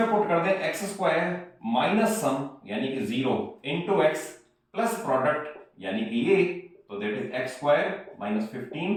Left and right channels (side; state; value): both; identical; correlation 1.00